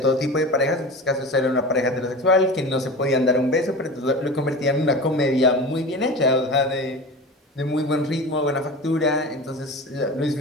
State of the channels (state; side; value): normal; both; correlation 0.31